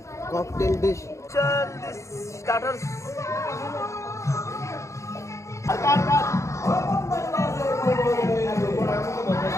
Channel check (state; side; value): late; right; 0.14 ms